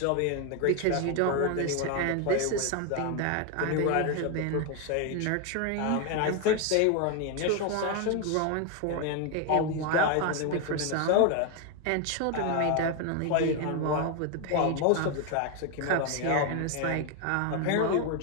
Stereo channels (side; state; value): both; different; correlation 0.01